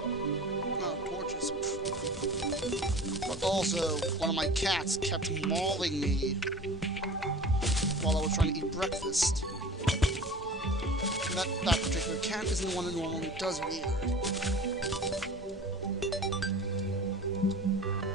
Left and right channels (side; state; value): both; normal; correlation 0.39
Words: torches. But also, one of my cats kept mauling me while I was trying to eat breakfast. And that particular cat isn't the one that normally does it either.